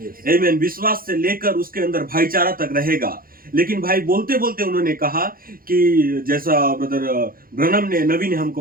आमेन। विश्वास से लेकर उसके अंदर भाईचारा तक रहेगा। लेकिन भाई बोलते बोलते उन्होंने कहा कि जैसा ब्रदर ब्रनम ने नबी ने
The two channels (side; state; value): left; late; 0.42 ms